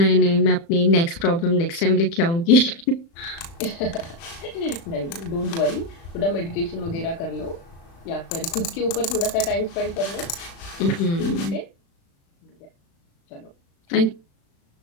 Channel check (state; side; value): late; right; 36 ms